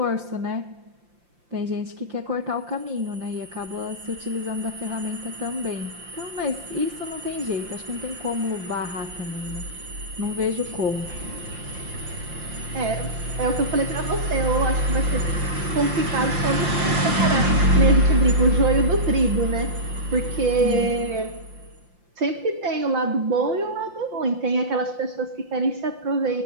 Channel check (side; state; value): left; late; 5.7 ms